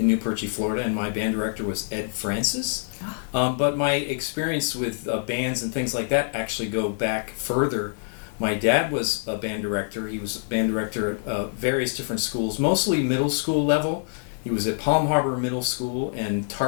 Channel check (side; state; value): right; silent; digital silence